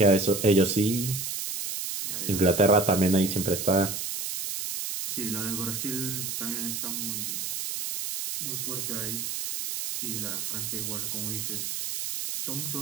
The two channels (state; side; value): noise; right; hiss, 4 dB below the sound